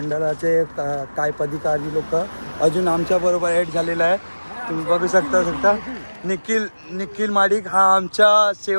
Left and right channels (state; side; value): inverted; both; correlation -1.00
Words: काय पदाधिकारी लोक अजून आमच्याबरोबर ॲड झालेला आहे. तुम्ही बघू शकता निखिल माडिक हा आमच्या